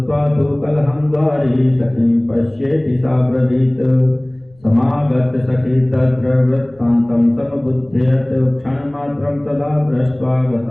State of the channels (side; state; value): left; noise; rumble, 30 dB below the sound